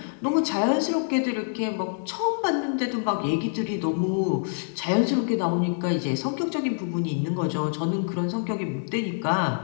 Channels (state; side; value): silent; right; digital silence